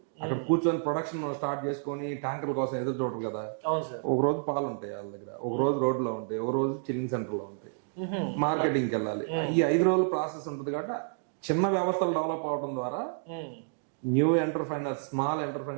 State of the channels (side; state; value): left; silent; digital silence